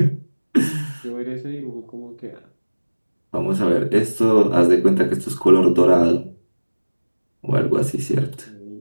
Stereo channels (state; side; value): inverted; both; correlation -1.00